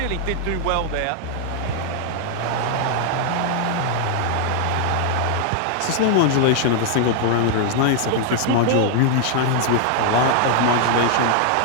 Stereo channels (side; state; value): both; different; correlation 0.00